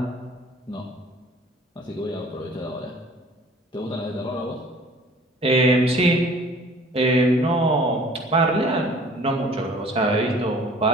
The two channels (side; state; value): both; normal; correlation 0.50